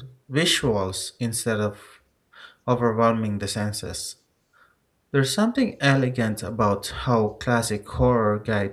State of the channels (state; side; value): identical; both; correlation 1.00